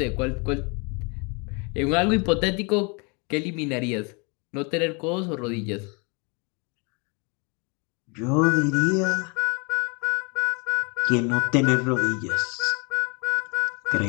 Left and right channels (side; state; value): right; quieter; 32.3 dB